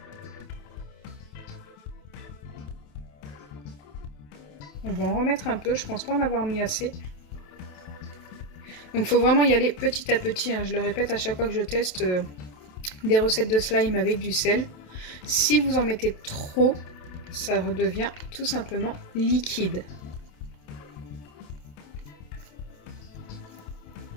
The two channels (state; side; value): late; right; 27 ms